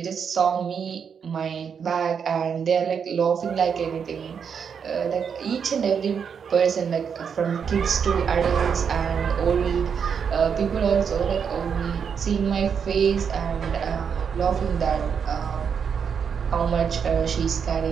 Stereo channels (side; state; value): left; quieter; 6.9 dB